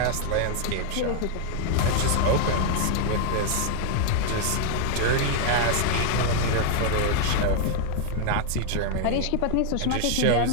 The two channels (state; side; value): different; both; correlation 0.00